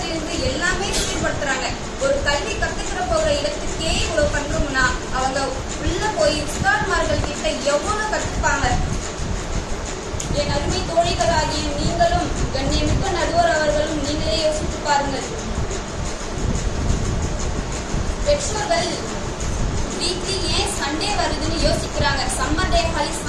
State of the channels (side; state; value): both; identical; correlation 1.00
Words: எல்லாமே சீர்படுத்துறாங்க. ஒரு கல்வி கத்துக்கிற போகிற இடத்துக்கே இவ்வளவு பண்றோம்னா அவங்க உள்ள போய் உஸ்தாத்மார்கள் கிட்ட எவ்வளவு கத்துப்பாங்க. என் அருமை தோழிகளாகிய நீங்களும் கண்ணியமிக்க நடுவர் அவர்களும் நீங்களே யோசித்து பாருங்கள். பெற்றோர்கள் வீக்லி ஏன் சண்டே வருதுன்னு யோசிக்கிறாங்க. சம்மர் டே ஹாலிஸ்